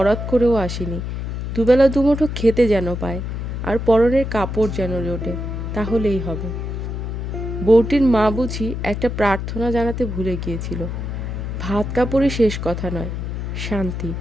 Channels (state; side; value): noise; left; hum, 4 dB below the sound